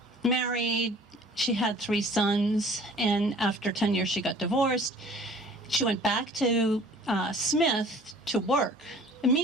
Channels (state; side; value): normal; both; correlation 0.50